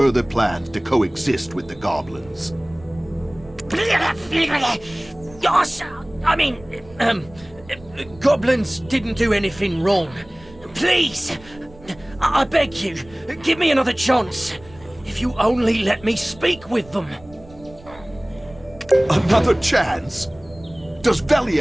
plans to coexist with the goblins. Yes, I mean, goblins didn't do anything wrong. Please, I beg you, give me another chance. If you only let me speak with them. Another chance? Does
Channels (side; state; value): right; noise; rumble, 22 dB below the sound